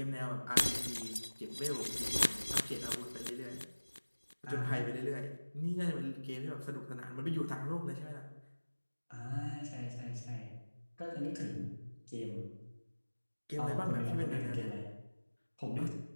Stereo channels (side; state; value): both; inverted; correlation -1.00